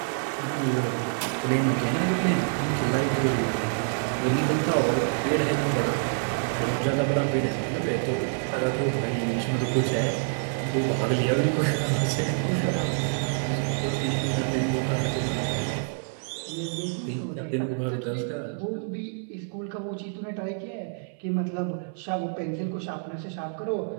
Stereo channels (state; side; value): silent; left; 60 dB below the other